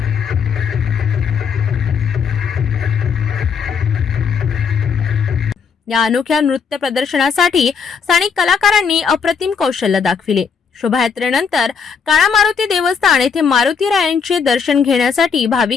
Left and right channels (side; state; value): right; quieter; 6.1 dB